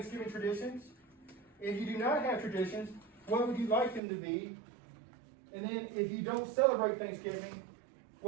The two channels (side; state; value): left; drops out; at 4.0 s